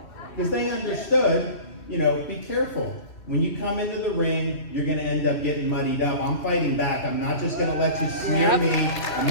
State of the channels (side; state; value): right; late; 2.8 ms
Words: because they understood, you know, be careful. When you come into the ring, you're going to end up getting muddied up. I'm fighting back. I'm not just going to let you smear me. I'm